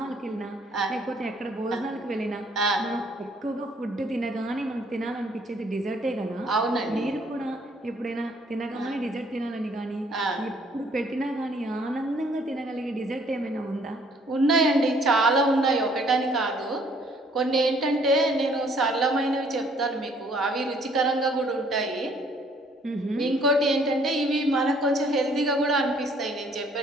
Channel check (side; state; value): both; normal; correlation 0.62